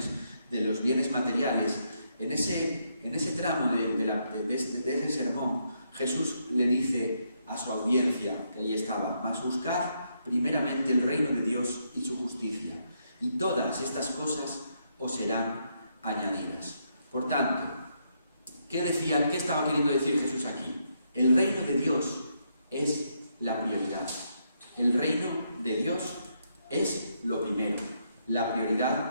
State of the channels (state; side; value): inverted; both; correlation -0.77